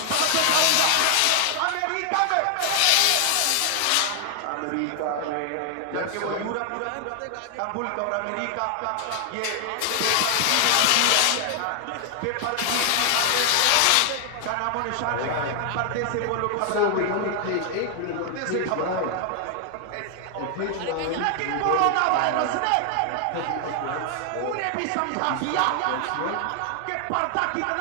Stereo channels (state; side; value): different; both; correlation 0.00